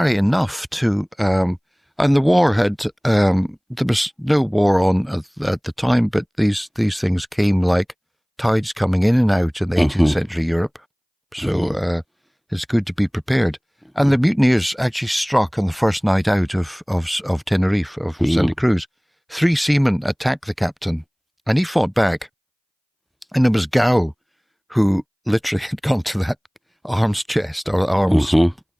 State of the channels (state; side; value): identical; both; correlation 1.00